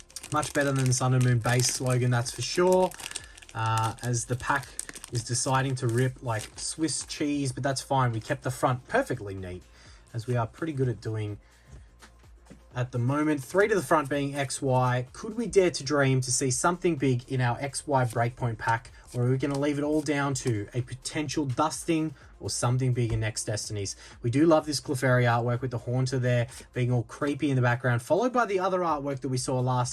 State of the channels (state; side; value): identical; both; correlation 1.00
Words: Much better than the Sun and Moon base slogan, that's for sure. As the pack is deciding to rip like Swiss cheese, but that's fine. We kept the front perfectly neat, as we are pretty good at doing at the moment. 3 to the front being XY. Could we dare to dream to see something big in our XY Breakpoint pack, or are we going to leave it all down to a potential dusting or something big in next Destinies? We do love this Clefairy artwork with the Haunter there being all creepy in the background, followed by the other artwork that we saw